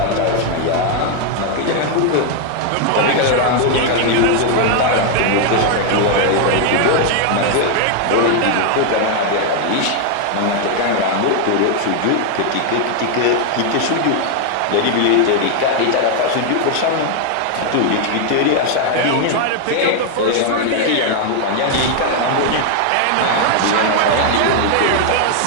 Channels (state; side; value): different; both; correlation 0.00